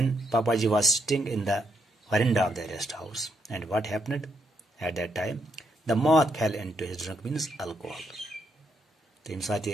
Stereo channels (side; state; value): both; normal; correlation 0.76